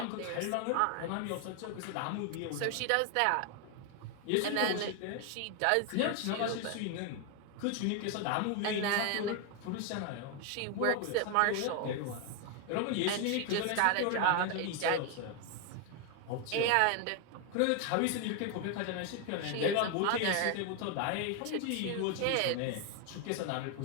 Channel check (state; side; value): different; both; correlation 0.01